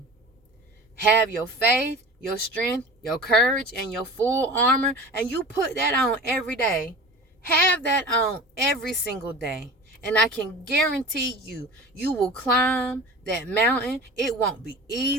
Have your faith, your strength, your courage, and your full armor, and you put that on every day. Have that on every single day. And I can guarantee you, you will climb that mountain. It won't be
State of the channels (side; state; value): both; normal; correlation 0.37